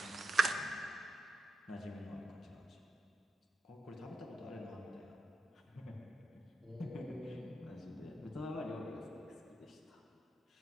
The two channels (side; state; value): both; normal; correlation 0.85